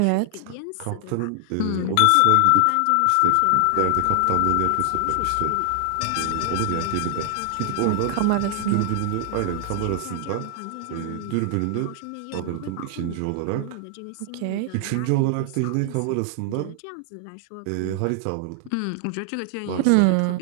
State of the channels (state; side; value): different; both; correlation 0.00